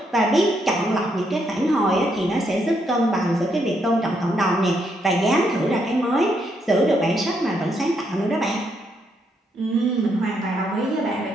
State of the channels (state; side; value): normal; both; correlation 0.76